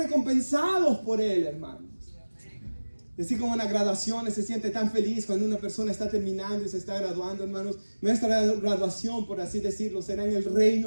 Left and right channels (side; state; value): both; inverted; correlation -1.00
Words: por Él, hermanos. Así como en las graduaciones se siente tan feliz cuando una persona está terminando y se está graduando, hermanos. Nuestra graduación, por así decirlo, será en el